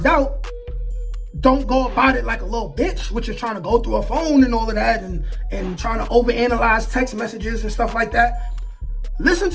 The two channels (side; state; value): both; identical; correlation 1.00